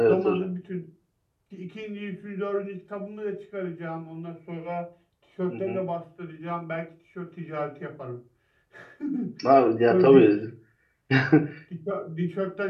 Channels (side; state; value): both; identical; correlation 1.00